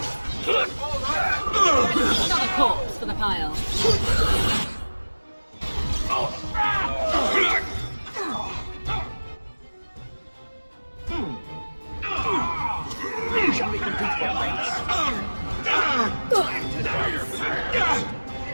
Another corpse for the pile. Shall we compete for points?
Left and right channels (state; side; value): inverted; both; correlation -1.00